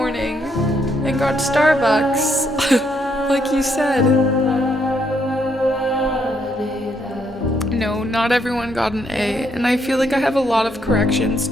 and got Starbucks. Like you said. No, not everyone got an A, and I feel like I have a lot of corrections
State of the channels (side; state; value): both; normal; correlation 0.74